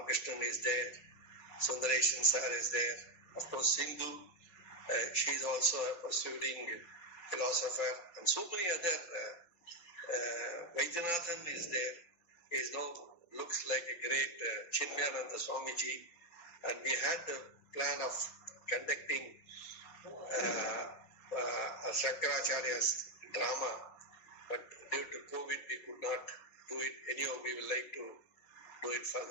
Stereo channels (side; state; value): right; late; 5.8 ms